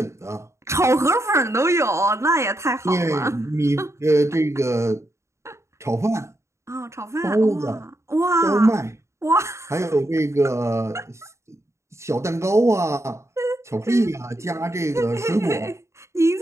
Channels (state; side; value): late; left; 0.14 ms